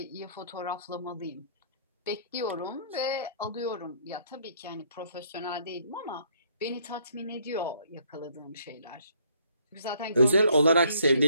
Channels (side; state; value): both; inverted; correlation -0.65